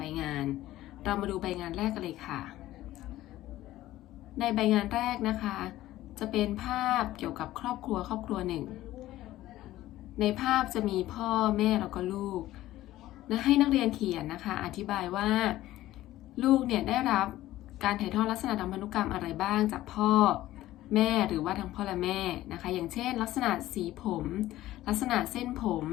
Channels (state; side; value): quieter; right; 15.2 dB